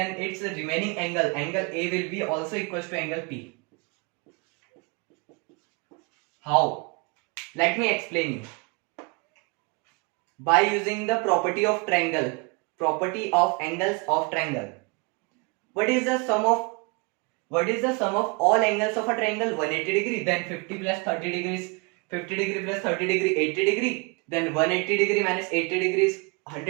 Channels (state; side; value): quieter; left; 29.5 dB